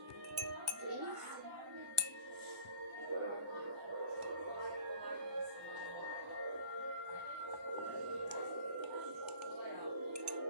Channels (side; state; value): left; late; 1.1 ms